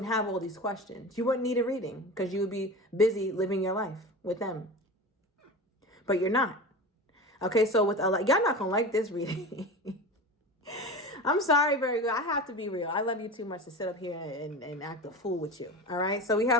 have all these questions. You wouldn't need a reading because you would be busy living your life with them. But you're not. Okay, so with y'all not going to like this reading. I'm sorry, Virgo. I have to be real. I love you too much to sit up here and act a fool with you. All right, so we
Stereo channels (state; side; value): normal; both; correlation 0.29